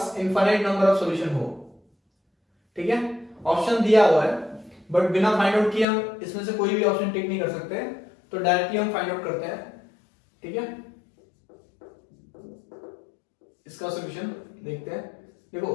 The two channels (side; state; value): right; drops out; at 5.9 s